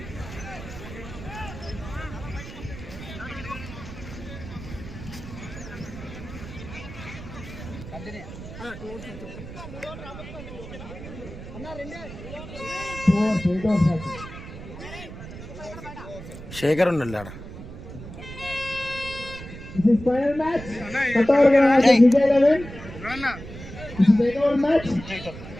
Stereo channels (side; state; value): right; noise; rumble, 12 dB below the sound